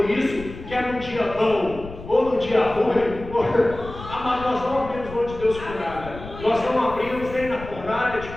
isso, quer no dia bom ou no dia ruim, amado, nós não abrimos mão de Deus por nada. Nós não abrimos nem na fornalha de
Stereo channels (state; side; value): noise; left; rumble, 14 dB below the sound